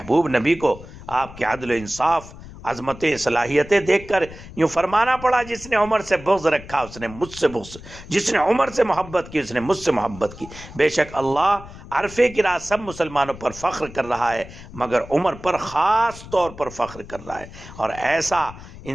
نبی کو آپ کے عدل و انصاف، عظمتیں، صلاحیتیں دیکھ کر یوں فرمانا پڑا، جس نے عمر سے بغض رکھا اس نے مجھ سے بغض، جس نے عمر سے محبت کی اس نے مجھ سے محبت کی۔ بے شک اللہ عرفے کی رات سب مسلمانوں پر فخر کر رہا ہے، مگر عمر پر خاص طور پر فخر کر رہا ہے۔ اور ایسا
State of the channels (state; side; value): noise; left; rumble, 16 dB below the sound